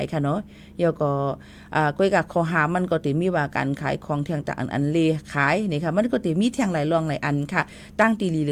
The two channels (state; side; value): identical; both; correlation 1.00